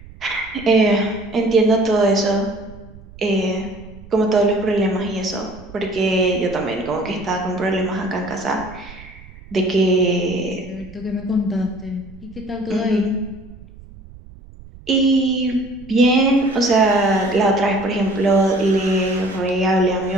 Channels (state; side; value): noise; right; rumble, 20 dB below the sound